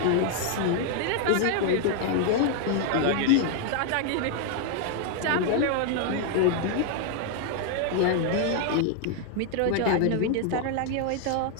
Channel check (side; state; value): both; different; correlation 0.00